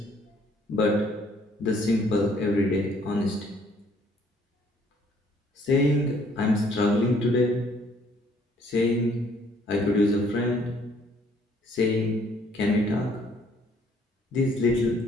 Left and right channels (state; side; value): normal; both; correlation 0.62